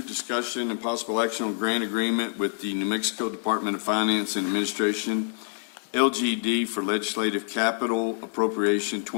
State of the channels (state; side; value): silent; right; 61 dB below the other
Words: discussion and possible action on grant agreement with the New Mexico Department of Finance and Administration, LGD, for legislative capital appropriation